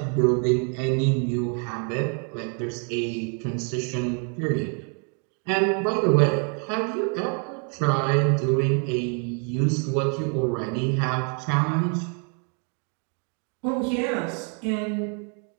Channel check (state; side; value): quieter; left; 39.9 dB